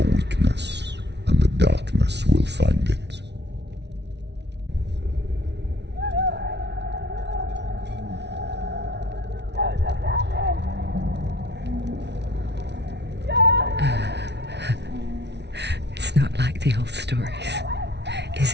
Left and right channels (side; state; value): left; late; 0.50 ms